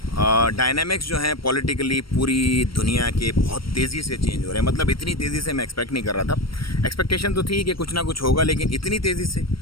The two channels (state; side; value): late; right; 0.75 ms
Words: डायनामिक्स जो हैं पॉलिटिकली पूरी दुनिया के बहुत तेज़ी से चेंज हो रहे हैं। मतलब इतनी तेज़ी से मैं एक्सपेक्ट नहीं कर रहा था। एक्सपेक्टेशन तो थी कि कुछ ना कुछ होगा, लेकिन इतनी तेज़ी से